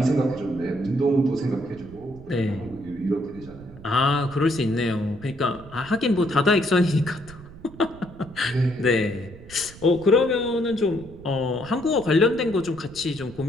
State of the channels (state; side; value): noise; right; rumble, 18 dB below the sound